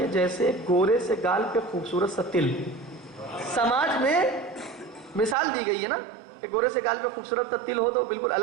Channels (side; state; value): left; drops out; at 5.4 s